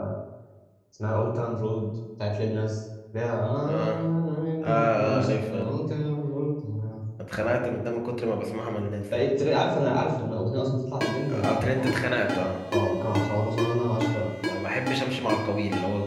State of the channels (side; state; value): both; identical; correlation 1.00